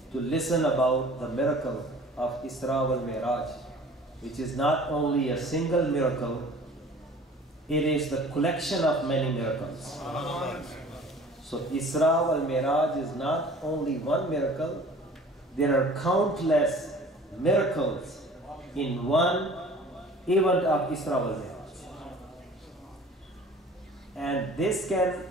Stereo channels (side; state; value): both; normal; correlation 0.47